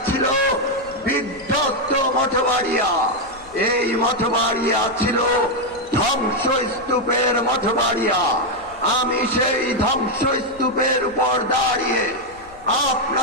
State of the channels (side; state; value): left; noise; rumble, 24 dB below the sound